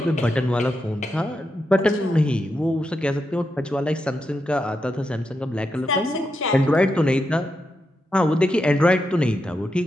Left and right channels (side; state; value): both; normal; correlation 0.85